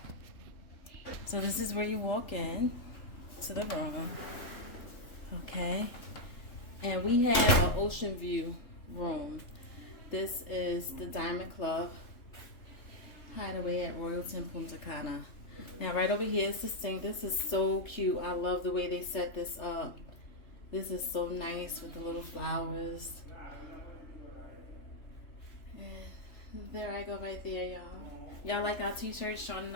So this is where you walk in to the room. Okay. And we have an ocean view room. This is the Diamond Club Hideaway at Royalton, Punta Cana. Now right over here is the sink. This is so cute. I love the way they set this up. This is so nice with the little flowers. And there I go right there, y'all. Y'all like our t-shirts? Sean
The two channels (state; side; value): late; right; 3.3 ms